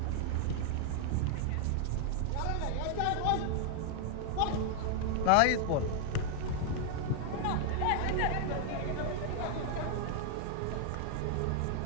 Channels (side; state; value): both; different; correlation 0.00